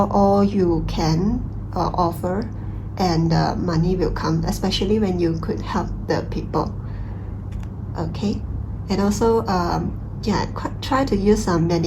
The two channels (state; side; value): identical; both; correlation 1.00